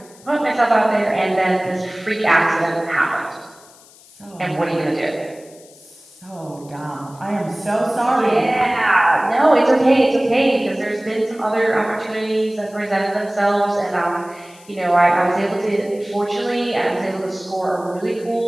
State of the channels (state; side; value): noise; left; hiss, 25 dB below the sound